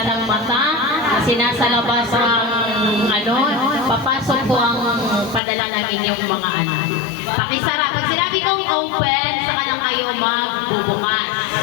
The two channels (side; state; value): right; drops out; at 5.4 s